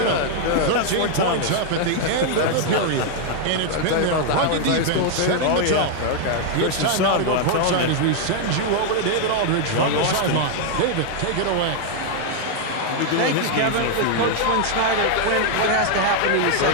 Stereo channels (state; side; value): different; both; correlation 0.00